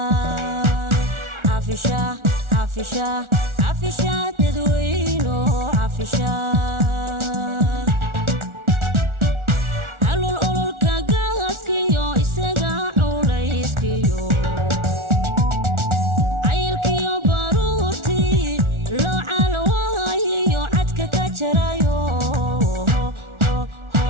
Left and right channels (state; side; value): late; left; 1.4 ms